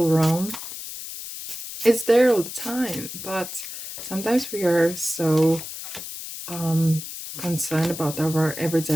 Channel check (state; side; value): noise; left; hiss, 9 dB below the sound